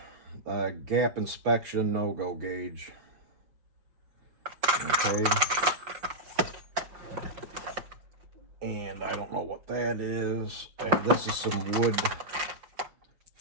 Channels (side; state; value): left; late; 5.5 ms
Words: Gap inspection, no-go gauge. Okay. And I don't know what that is. And this is some wood